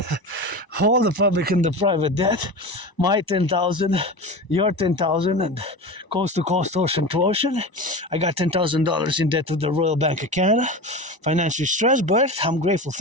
all the public and the private debt, my 10,000, your 10,000, and coast to coast, ocean to ocean. I got $10,000 in debt to the Royal Bank of Canada, financially stressed, but I'm grateful,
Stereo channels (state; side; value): late; right; 1.0 ms